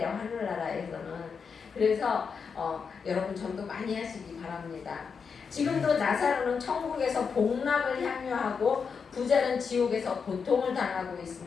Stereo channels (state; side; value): quieter; right; 5.9 dB